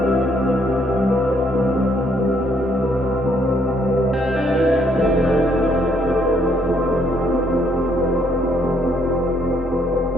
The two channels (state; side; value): normal; both; correlation 0.69